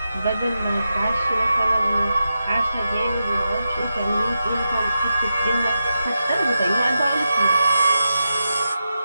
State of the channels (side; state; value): both; inverted; correlation -0.89